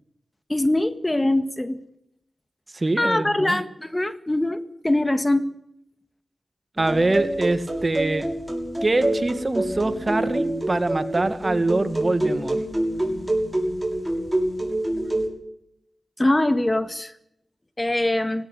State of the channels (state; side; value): normal; both; correlation 0.97